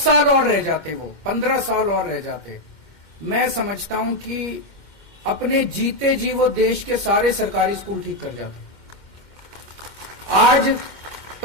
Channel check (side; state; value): right; late; 2.1 ms